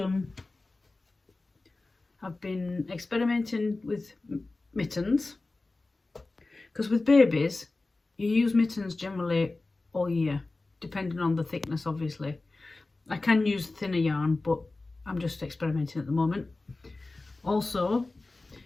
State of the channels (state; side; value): quieter; right; 3.3 dB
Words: been experimenting with mittens, because with babies you use mittens generally all year, depending on the thickness obviously. I can use thinner yarn, but I'm just experimenting at the moment. Also,